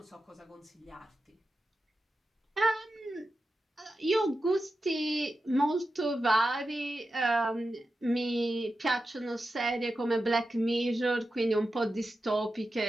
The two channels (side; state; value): both; normal; correlation 0.91